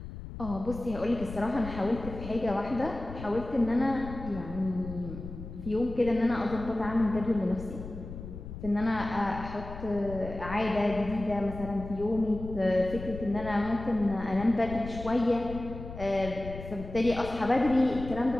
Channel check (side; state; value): left; noise; rumble, 11 dB below the sound